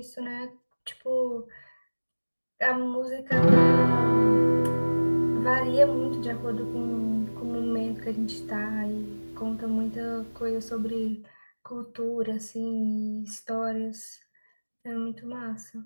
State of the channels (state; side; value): inverted; both; correlation -1.00